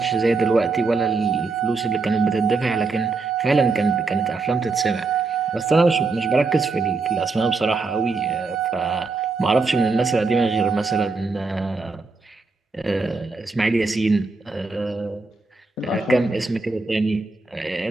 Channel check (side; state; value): left; quieter; 3.9 dB